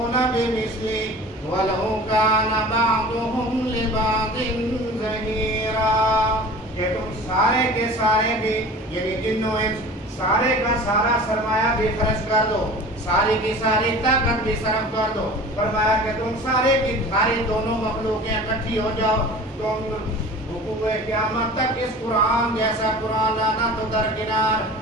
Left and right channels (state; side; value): normal; both; correlation 0.40